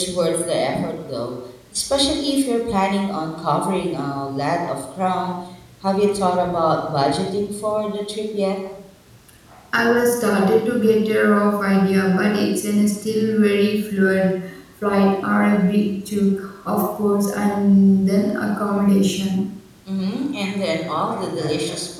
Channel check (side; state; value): both; identical; correlation 1.00